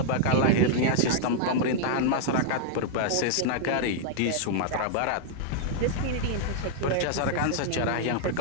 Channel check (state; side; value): different; both; correlation -0.01